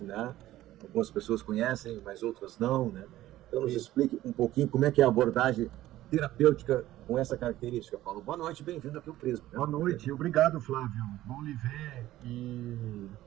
né? Algumas pessoas conhecem, mas outras não, né? Então nos Isso. explique um pouquinho como é que é a abordagem terapêutica com essa característica, Paulo. Boa noite, bem-vindo aqui ao Prisma, né? Boa noite, obrigado, Flávio. Bom lhe ver e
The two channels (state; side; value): quieter; left; 14.8 dB